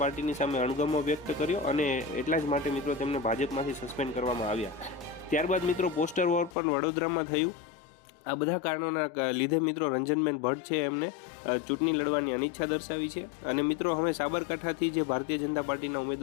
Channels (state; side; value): drops out; right; at 6.6 s